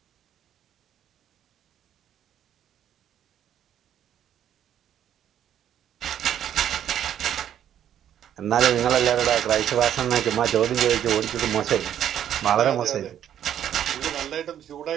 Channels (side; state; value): left; quieter; 10.3 dB